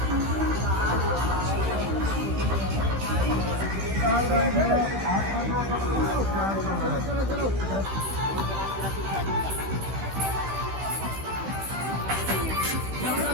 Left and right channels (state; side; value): late; left; 15 ms